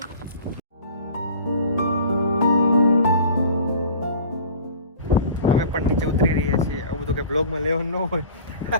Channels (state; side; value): inverted; both; correlation -0.42